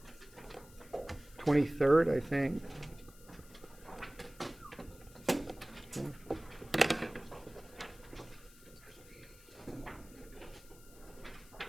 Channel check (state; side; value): noise; left; hiss, 22 dB below the sound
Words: 23rd, I think.